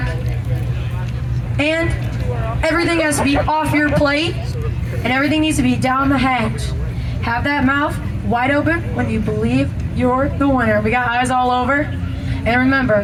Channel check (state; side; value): identical; both; correlation 1.00